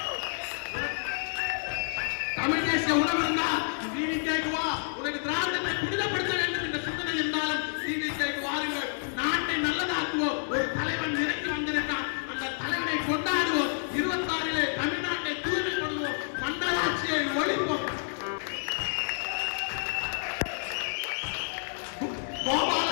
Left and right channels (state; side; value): silent; right; digital silence